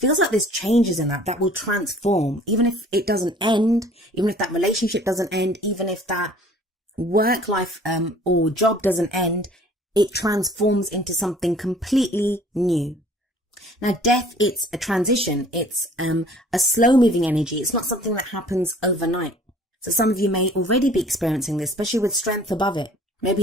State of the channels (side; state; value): both; normal; correlation 0.52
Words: like there's changes in that will transform. Even if it doesn't end, even if that relationship doesn't end, even if that work life or job doesn't end, it transforms into something completely new. Now, death, it's a transition. It's a slow moving energy. It's not something that happens overnight. So some of you may already be experiencing this, especially with strength above it.